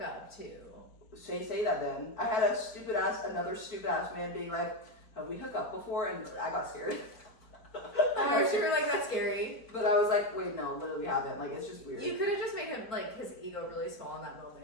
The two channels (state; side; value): late; right; 4.5 ms